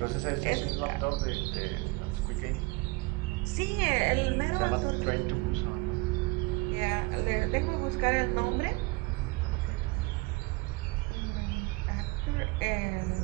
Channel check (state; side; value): quieter; left; 24.7 dB